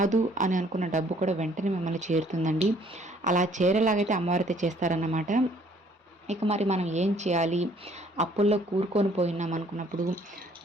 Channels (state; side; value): normal; both; correlation 0.60